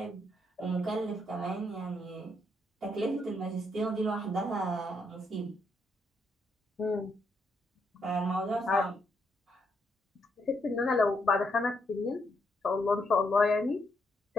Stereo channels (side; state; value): both; normal; correlation 0.77